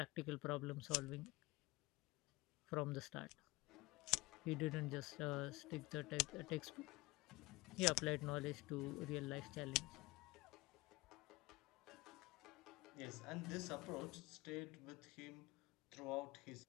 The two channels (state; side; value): quieter; right; 21.7 dB